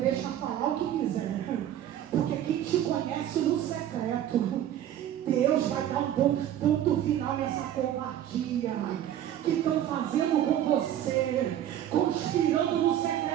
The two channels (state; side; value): quieter; left; 11.3 dB